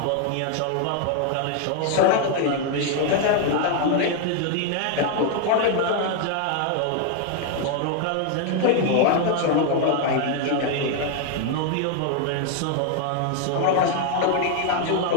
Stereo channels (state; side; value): different; both; correlation 0.00